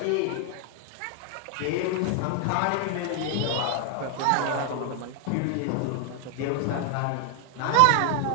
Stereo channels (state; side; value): different; both; correlation 0.00